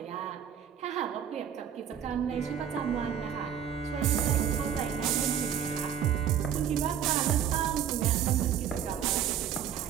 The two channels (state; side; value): quieter; left; 8.9 dB